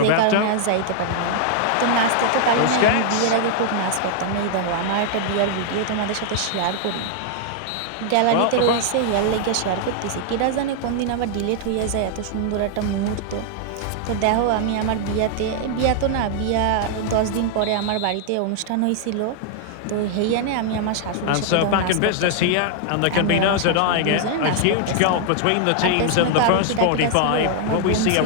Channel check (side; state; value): both; different; correlation 0.00